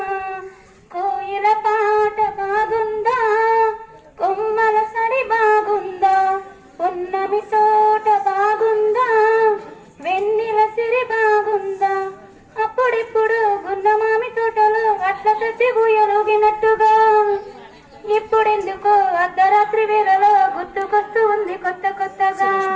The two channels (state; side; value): identical; both; correlation 1.00